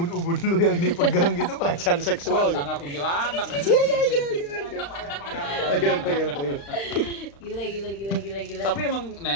lu yang dipegang gitu pelecehan seksual gitu. Sangat kuntilanak. Iya. Gila. Tapi emang,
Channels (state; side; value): late; right; 35 ms